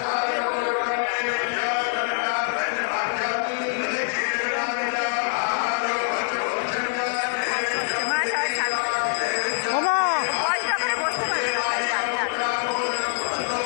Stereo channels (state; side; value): silent; right; 62 dB below the other